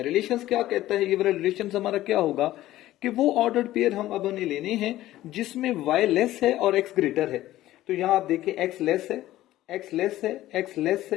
रिलेशंस क्या कहता है, ये वाला रिलेशन हमारा क्या होगा कि वो ऑर्डर्ड पेयर हम अब हमें लेने हैं जिसमें y लेस है और x ग्रेटर है। तो यहां आप देखें x लेस है, x लेस है, x लेस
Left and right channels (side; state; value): right; quieter; 15.0 dB